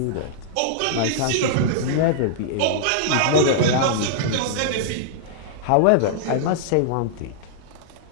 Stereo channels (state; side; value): different; both; correlation -0.01